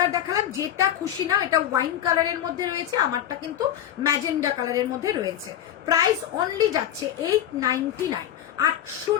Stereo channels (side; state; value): right; quieter; 11.0 dB